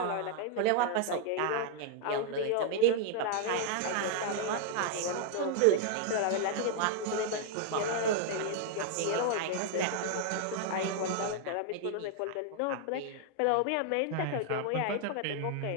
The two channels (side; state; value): both; different; correlation 0.00